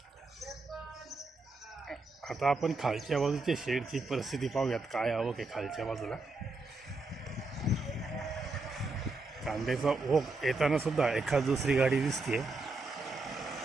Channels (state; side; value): quieter; left; 3.4 dB